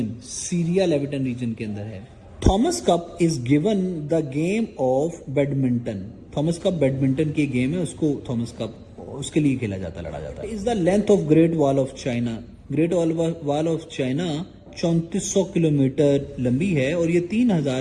सीरिया लेविटन रीजन के अंदर है. Thomas cup is given the game of badminton. Thomas cup badminton की गेम है, उसको थॉमस कप उसके लिए खेला जाता, लड़ा जाता है. Is the length of great wall of China. Great wall of China 3400 kilometre लंबी है और ये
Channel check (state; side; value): identical; both; correlation 1.00